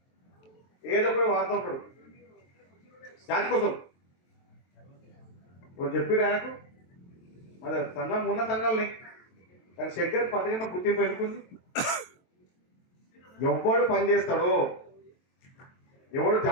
ఏదో ఒకటి వాడుతూ ఉంటాడు జాతి కోసం. ఇప్పుడు చెప్పారు ఆయనకు మరి సంఘం ఉన్న సంఘాలని, కానీ శంకర్ పథకం గుర్తింపు ఎన్నుకుంది. ఎవడు పని చేస్తాడో, ఎవడు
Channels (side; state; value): right; late; 23 ms